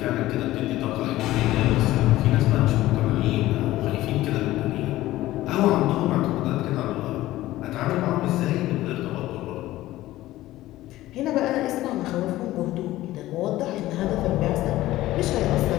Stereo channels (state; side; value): quieter; right; 16.0 dB